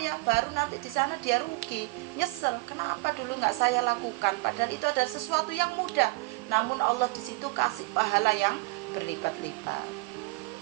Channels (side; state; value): left; quieter; 24.9 dB